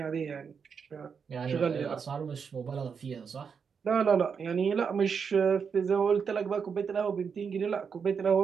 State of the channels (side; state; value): left; quieter; 6.3 dB